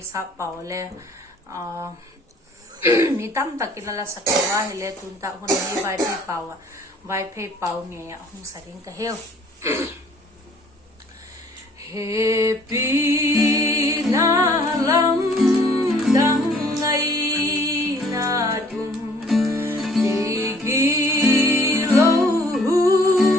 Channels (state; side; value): normal; both; correlation 0.57